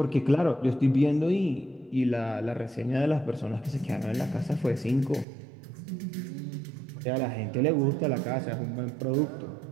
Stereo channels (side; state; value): left; drops out; at 5.2 s